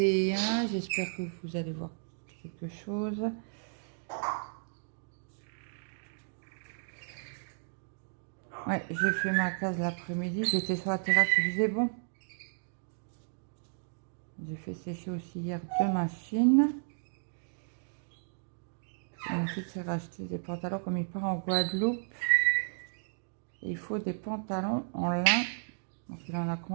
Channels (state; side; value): silent; left; digital silence